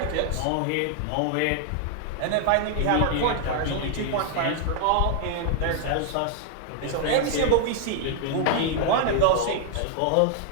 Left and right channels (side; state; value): both; different; correlation 0.00